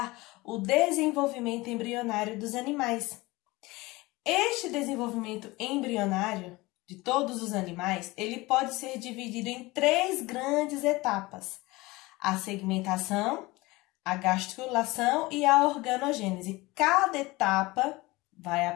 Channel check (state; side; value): quieter; right; 21.5 dB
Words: o desenvolvimento embrionário dos animais. Este desenvolvimento embrionário de todos os animais, ele pode ser dividido em três grandes etapas: a segmentação, a gastrulação e a organogênese. Cada etapa vai